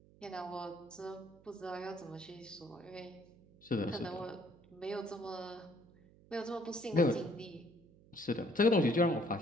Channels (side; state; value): right; noise; hum, 25 dB below the sound